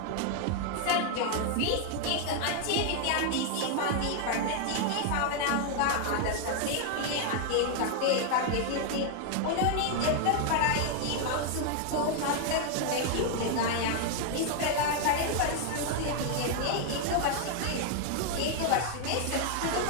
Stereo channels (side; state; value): both; different; correlation 0.00